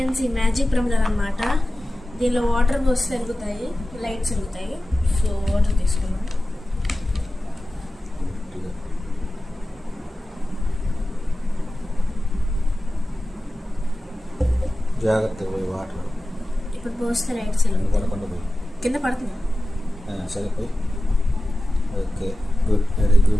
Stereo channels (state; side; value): normal; both; correlation 0.95